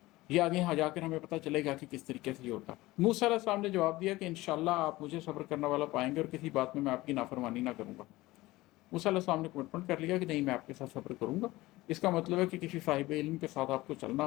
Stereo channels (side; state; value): right; quieter; 19.0 dB